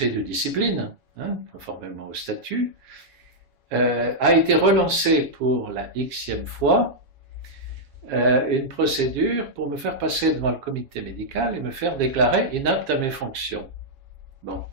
de discipline, hein, conformément au statut, a été relancé pour la xème fois une procédure pour me faire passer devant le comité médical et me faire déclarer inapte à mes fonctions. Bon.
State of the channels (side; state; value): left; late; 7.3 ms